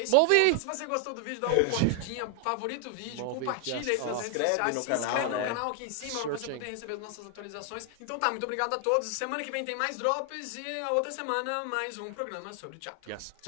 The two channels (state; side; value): different; both; correlation 0.00